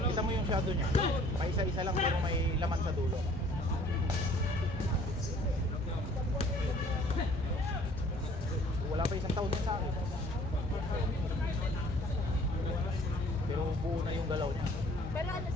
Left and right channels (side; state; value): both; normal; correlation 0.55